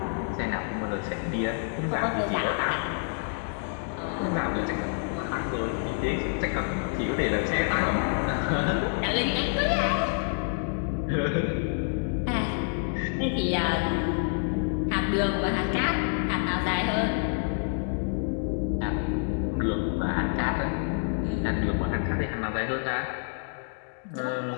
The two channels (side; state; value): right; silent; 56 dB below the other